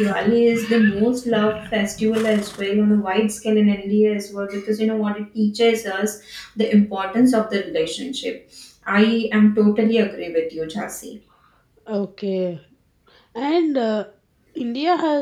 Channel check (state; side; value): identical; both; correlation 1.00